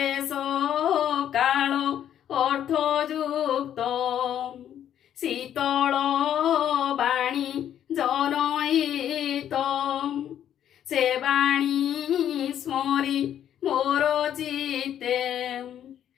କାଳ ଅର୍ଥଯୁକ୍ତ ଶୀତଳ ବାଣୀ ଜନହିତ। ସେ ବାଣୀ ସ୍ମରି ମୋର ଚିତ୍ତେ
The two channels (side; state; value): right; quieter; 10.3 dB